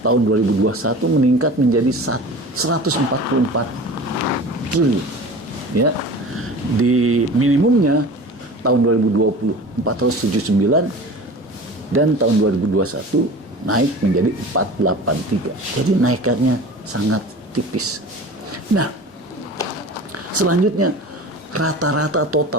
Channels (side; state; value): both; normal; correlation 0.37